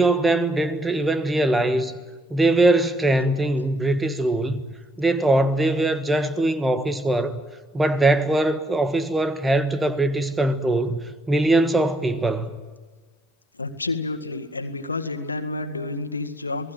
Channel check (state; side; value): normal; both; correlation 0.72